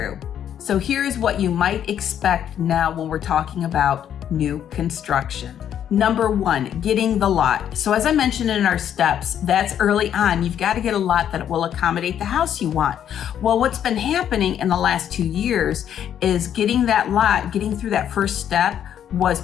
So here's what you might expect now when we're talking about new construction. Number 1, getting the lot. So as I mentioned in our steps, that's early on. You've got to get a lot that will accommodate the house you want. Well, what's been happening in the last 2 years is getting that lot, getting through that first step was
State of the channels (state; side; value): quieter; right; 9.7 dB